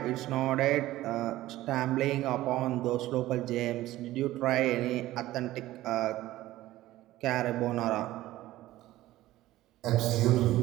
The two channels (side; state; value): left; quieter; 15.9 dB